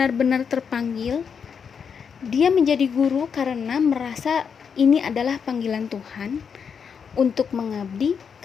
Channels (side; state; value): right; quieter; 6.7 dB